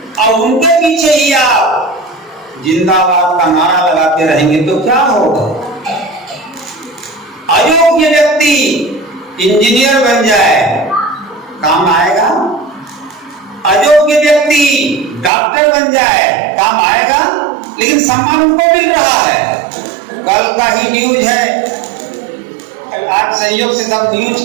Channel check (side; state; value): left; drops out; at 15.3 s